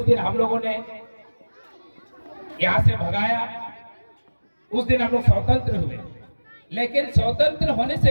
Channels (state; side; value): inverted; both; correlation -1.00